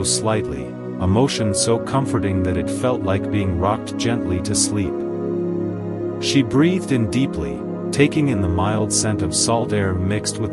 slightly, a motion so comforting that it felt like being rocked gently to sleep. She breathed in deeply, taking in the mild scent of salt air mixed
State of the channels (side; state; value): both; identical; correlation 1.00